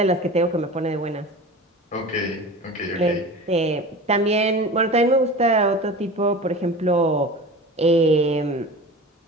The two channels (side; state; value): both; normal; correlation 0.34